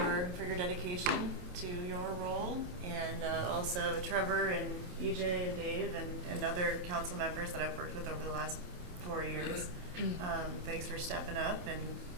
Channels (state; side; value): late; left; 28 ms